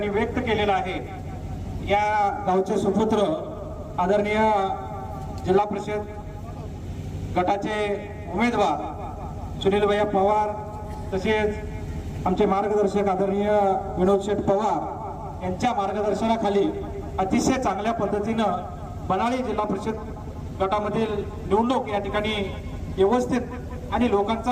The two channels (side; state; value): both; identical; correlation 1.00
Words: व्यक्त केलेला आहे। या गावचे सुपुत्र आदरणीय जिल्हा परिषद गटाचे उमेदवार सुनील भैया पवार तसेच आमचे मार्गदर्शक आदरणीय विनोद शेठ पवार यांच्या मार्गदर्शनाखाली अतिशय चांगल्या पद्धतीनं बनाळी जिल्हा परिषद गटामधील निवडणूक या ठिकाणी व्यवस्थित आणि